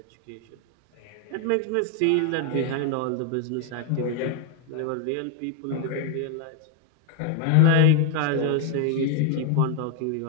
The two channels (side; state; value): both; different; correlation 0.01